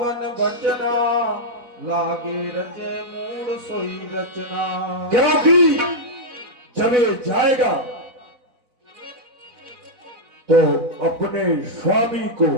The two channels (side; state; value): left; late; 4.0 ms